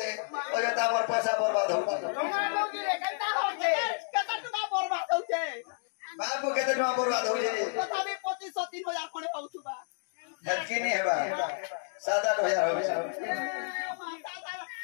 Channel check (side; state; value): right; silent; digital silence